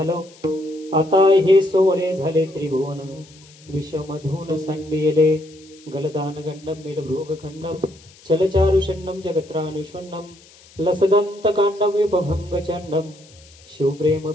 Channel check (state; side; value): noise; left; hiss, 25 dB below the sound